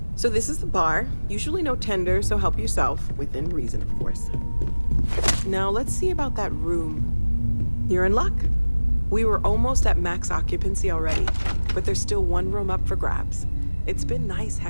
So this is the bar. Usually no tender, so help yourself. Within reason, of course. Now let's see about that room. You're in luck. We were almost at max occupancy already, but there's still one room up for grabs. It's been nice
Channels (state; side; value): inverted; both; correlation -1.00